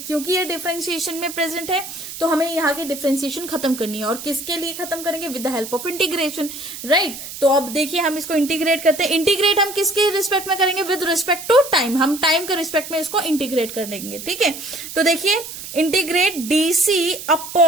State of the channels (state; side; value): noise; right; hiss, 10 dB below the sound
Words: ये डिफरेंशिएशन में प्रेजेंट है तो हमें यहाँ की डिफरेंशिएशन खत्म करनी है, और किसके लिए खत्म करेंगे, with the help of integration, right. तो अब देखिए हम इसको इंटीग्रेट करते हैं। इंटीग्रेट हम किसके रिस्पेक्ट में करेंगे, विद रिस्पेक्ट टू टाइम, हम टाइम के रिस्पेक्ट में इसको इंटीग्रेट कर देंगे, ठीक है। तो देखिए integrate DC